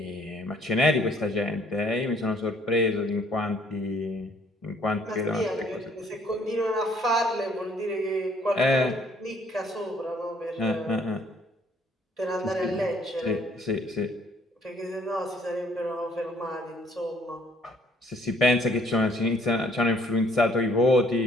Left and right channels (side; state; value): both; normal; correlation 0.63